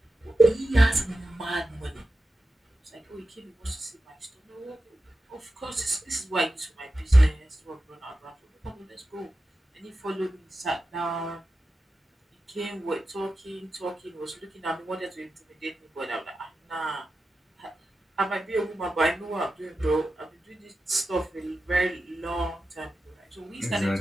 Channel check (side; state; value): both; normal; correlation 0.92